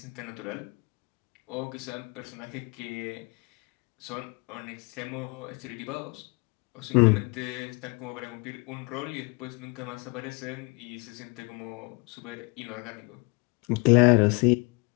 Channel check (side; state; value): right; quieter; 29.8 dB